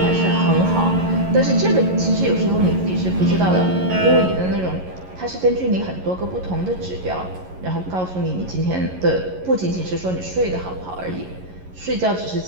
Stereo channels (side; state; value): left; late; 11 ms